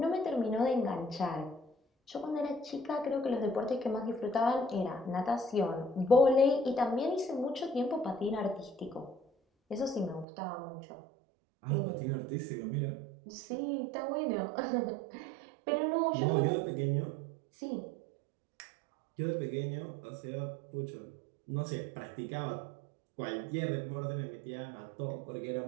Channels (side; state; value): left; drops out; at 10.2 s